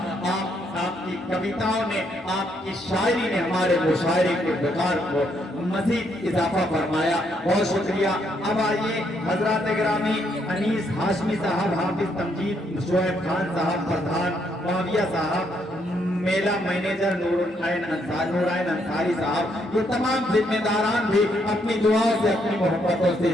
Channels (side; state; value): both; normal; correlation 0.73